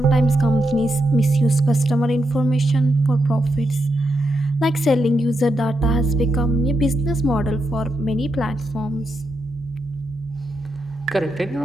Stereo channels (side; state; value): right; noise; hum, 27 dB below the sound